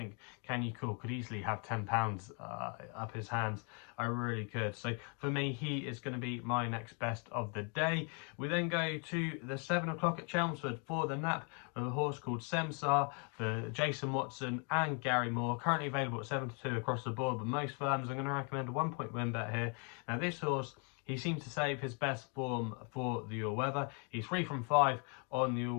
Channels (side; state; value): right; quieter; 37.3 dB